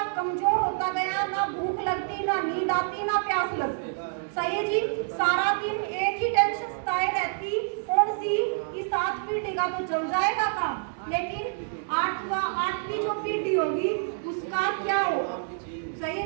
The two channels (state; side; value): silent; left; digital silence